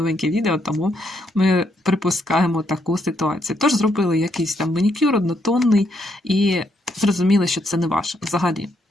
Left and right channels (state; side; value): normal; both; correlation 0.76